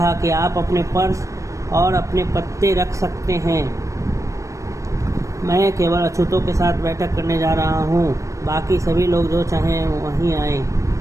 कि आप अपने पर्स और अपने पत्ते रख सकते हैं, मैं केवल अछूतों के साथ बैठक करने जा रहा हूँ, बाकी सभी लोग जो चाहें वहीं आए।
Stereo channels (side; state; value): left; late; 0.15 ms